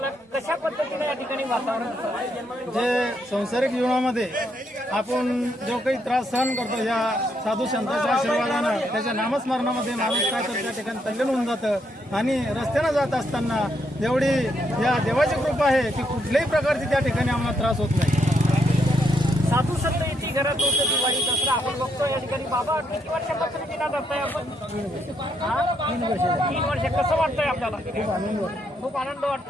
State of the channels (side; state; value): both; normal; correlation 0.76